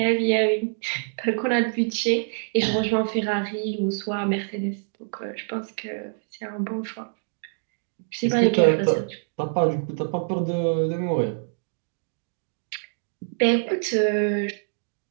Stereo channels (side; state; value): left; silent; digital silence